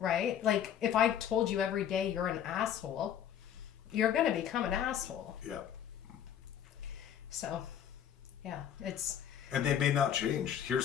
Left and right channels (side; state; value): right; quieter; 9.7 dB